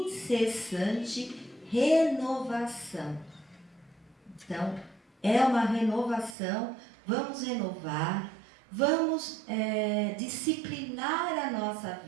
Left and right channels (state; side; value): drops out; left; at 6.4 s